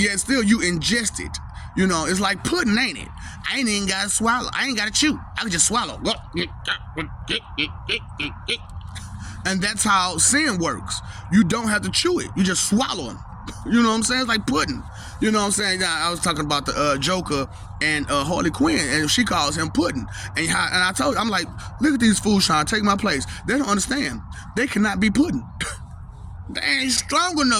still you ingest it. It's like pudding, ain't it? I ain't even gotta swallow. I ain't gotta chew. I can just swallow. And that's how sin works. You don't have to chew it. You just swallow them. You know what I'm saying? It's like pudding. You know what I'm saying? Now, I was talking about the Joker and Harley Quinn, and she calls him pudding. And I told her, I'm like, look at these fools trying to take my place. They don't understand. They cannot be pudding. They ain't strong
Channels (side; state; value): both; identical; correlation 1.00